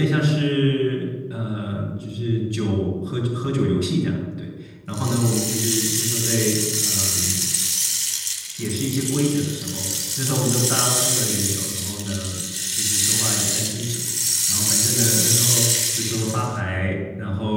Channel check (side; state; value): both; identical; correlation 1.00